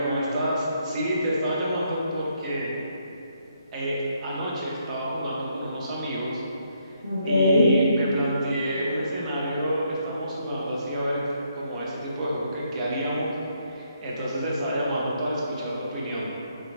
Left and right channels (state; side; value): inverted; both; correlation -0.73